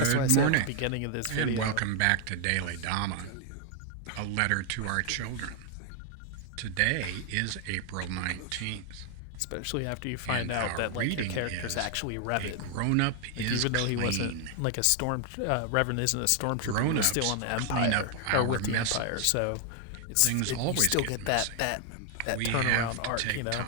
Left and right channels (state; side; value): different; both; correlation 0.00